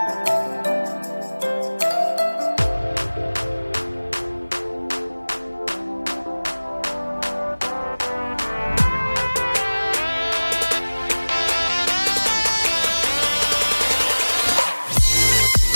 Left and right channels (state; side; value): inverted; both; correlation -1.00